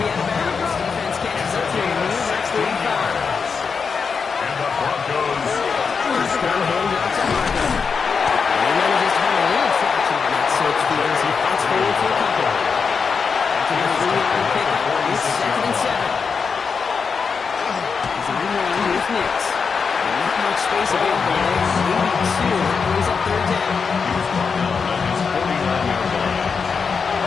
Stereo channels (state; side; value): quieter; right; 5.6 dB